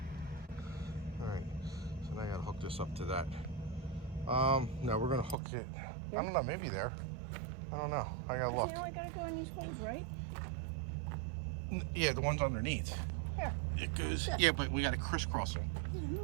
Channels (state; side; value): drops out; left; at 5.4 s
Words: All right, so now I gotta hook this up to that. No, we're gonna hook it. I don't know, maybe there. I don't know. I gotta look. You know I gotta go on these holes, right? Yeah, the ones underneath. Yeah. It goes. Yeah, but we gotta crisscross them.